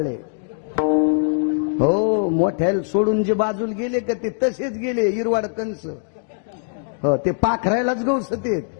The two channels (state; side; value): silent; right; digital silence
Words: हो, मोठ्याला सोडून जे बाजूला गेले का ते तसेच गेले इरवाड कंस. हो, ते पाखरायलाच गवसतेत.